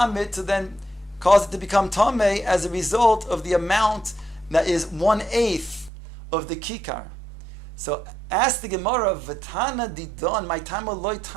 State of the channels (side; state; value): left; drops out; at 5.9 s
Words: to then cause it to become tameh as a result of the amount that is 1/8 of the kikar. So ask the Gemara, V'tana didon, my tama loy